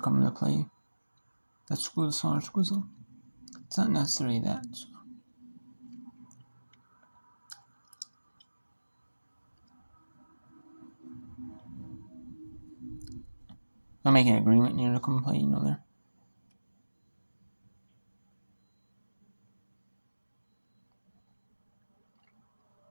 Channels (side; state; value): both; inverted; correlation -1.00